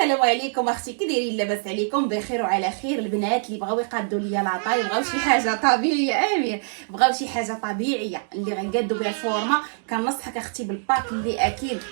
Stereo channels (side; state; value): left; silent; digital silence